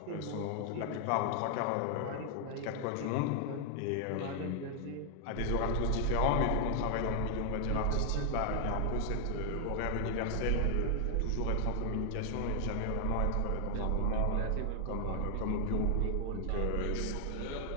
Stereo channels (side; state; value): both; different; correlation 0.00